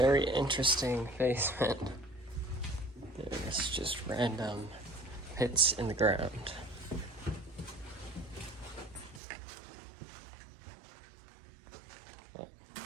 interesting basement. There's just random pits in the ground. Well,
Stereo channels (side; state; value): left; drops out; at 9.2 s